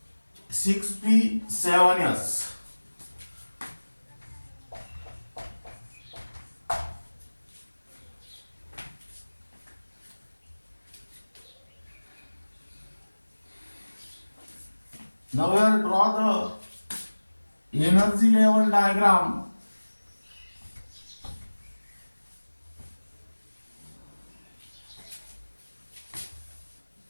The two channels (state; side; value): inverted; both; correlation -1.00